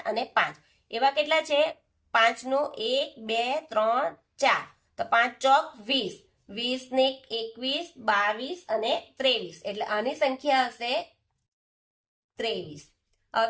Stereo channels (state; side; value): identical; both; correlation 1.00